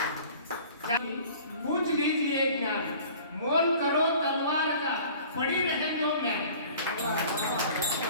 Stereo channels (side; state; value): both; inverted; correlation -0.46